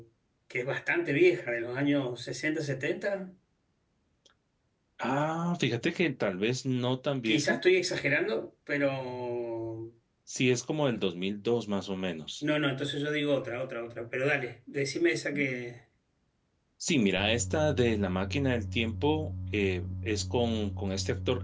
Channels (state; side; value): identical; both; correlation 1.00